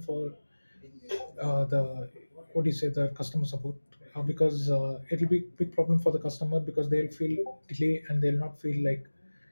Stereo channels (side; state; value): both; inverted; correlation -1.00